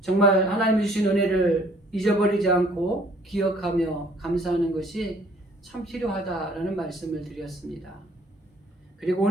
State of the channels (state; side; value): normal; both; correlation 0.59